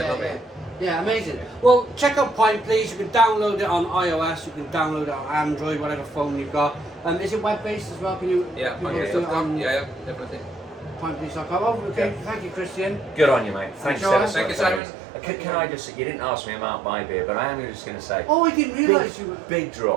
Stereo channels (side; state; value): left; drops out; at 14.8 s